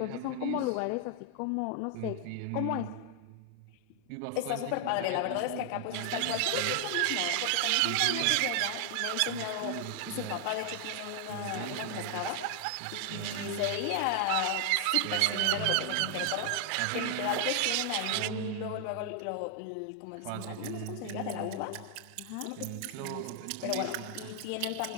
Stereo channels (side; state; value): both; different; correlation 0.00